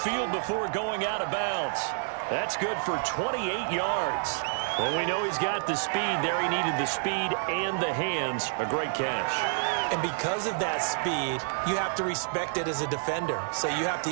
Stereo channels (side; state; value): left; silent; digital silence